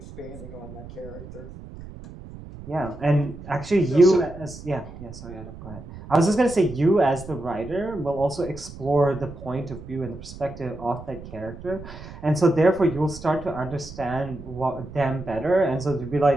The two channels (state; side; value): noise; right; rumble, 14 dB below the sound